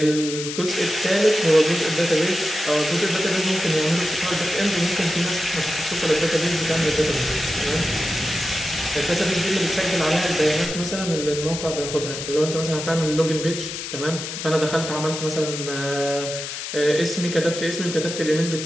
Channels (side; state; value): left; noise; hiss, 7 dB below the sound